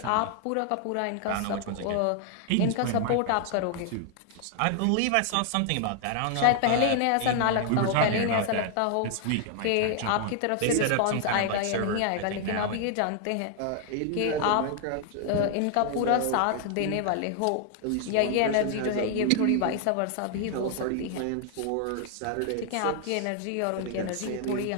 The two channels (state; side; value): different; both; correlation 0.00